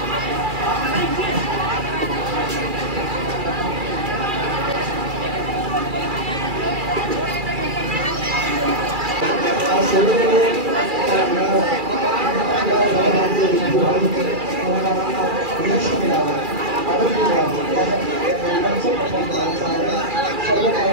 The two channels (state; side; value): late; left; 2.4 ms